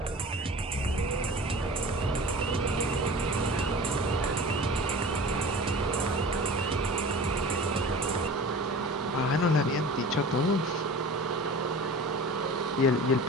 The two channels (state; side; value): normal; both; correlation 0.38